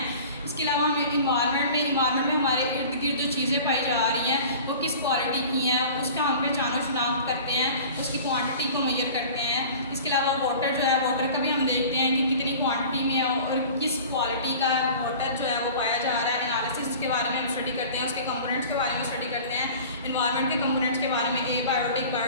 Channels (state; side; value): inverted; both; correlation -0.42